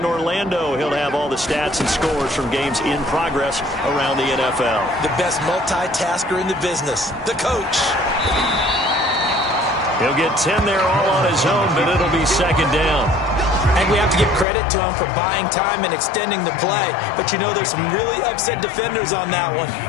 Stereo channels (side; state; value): right; drops out; at 14.5 s